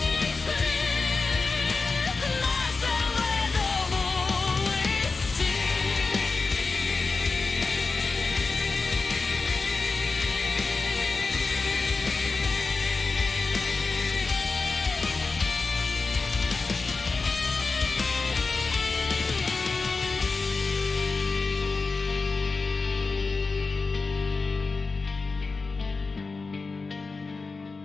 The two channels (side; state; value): right; quieter; 4.1 dB